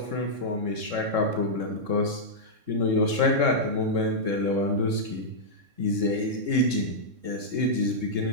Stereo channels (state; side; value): late; left; 3.6 ms